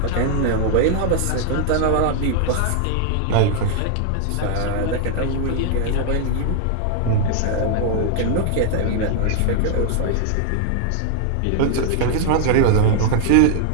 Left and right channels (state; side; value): different; both; correlation 0.00